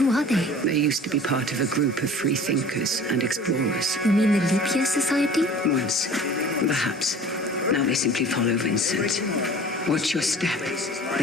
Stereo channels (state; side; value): normal; both; correlation 0.44